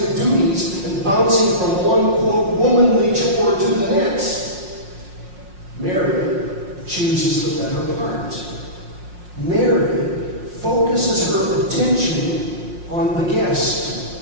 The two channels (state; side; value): late; left; 5.5 ms